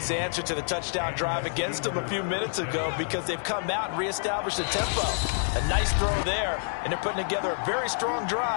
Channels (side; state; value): right; silent; 60 dB below the other